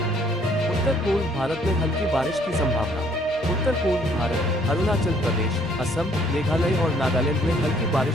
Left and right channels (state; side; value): normal; both; correlation 0.63